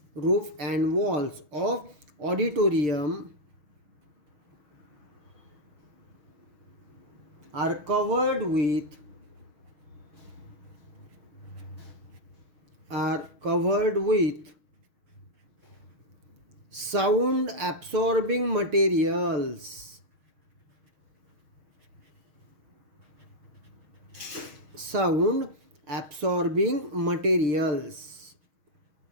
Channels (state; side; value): late; left; 6.4 ms